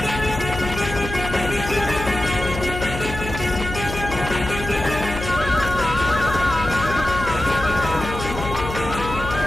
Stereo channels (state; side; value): noise; left; hum, 8 dB below the sound